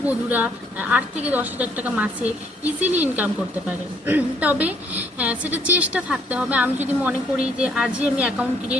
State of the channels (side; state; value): both; normal; correlation 0.65